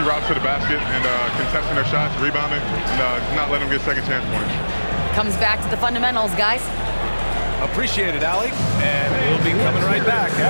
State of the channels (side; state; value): both; inverted; correlation -1.00